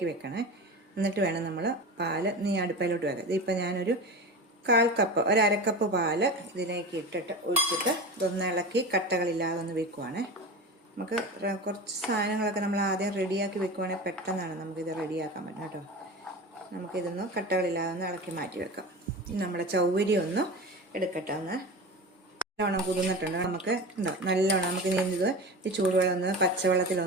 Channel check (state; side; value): normal; both; correlation 0.29